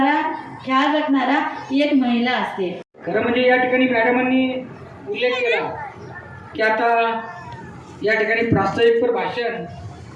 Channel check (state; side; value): identical; both; correlation 1.00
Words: ख्याल रखणारा ही एक महिला असते. खरं म्हणजे या ठिकाणी मॅडमांनी उल्लेख केला की आता या ठिकाणी प्रास्ताविकपर भाषण